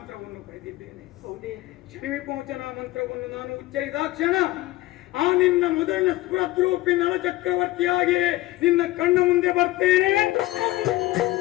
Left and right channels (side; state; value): right; quieter; 17.6 dB